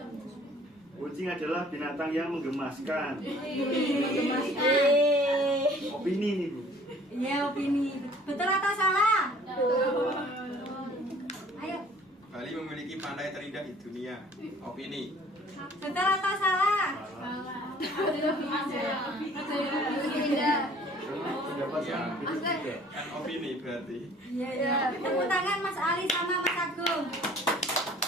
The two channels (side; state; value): both; normal; correlation 0.53